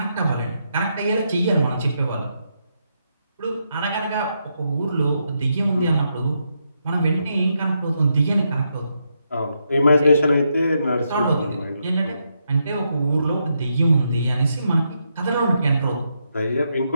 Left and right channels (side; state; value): both; inverted; correlation -0.81